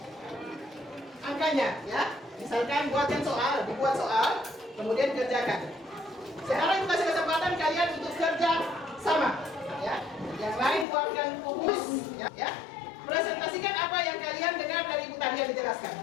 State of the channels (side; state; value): right; drops out; at 10.9 s